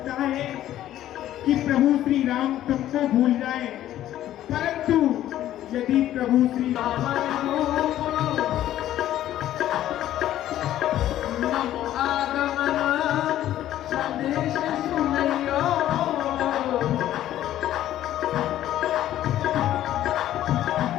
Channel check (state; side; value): quieter; right; 12.8 dB